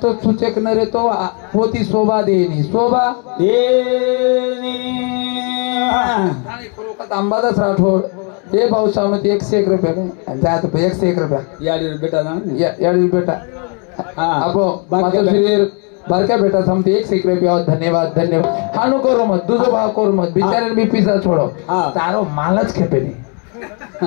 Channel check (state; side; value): quieter; right; 37.4 dB